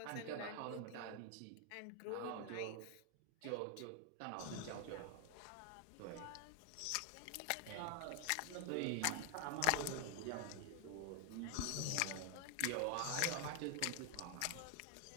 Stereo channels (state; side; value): different; both; correlation 0.00